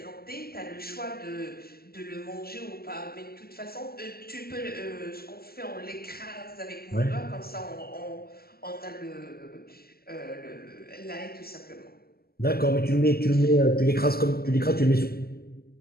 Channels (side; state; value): right; late; 0.45 ms